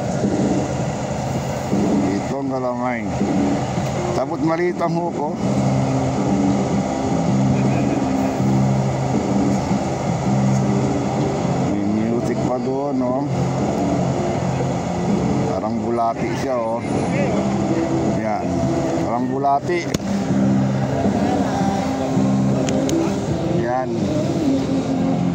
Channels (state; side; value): identical; both; correlation 1.00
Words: Ito ang galamay. Tapos maliit ang huko. May music pa doon, no? Parang bulati siya, oh. Yan, parang bulati. Yan.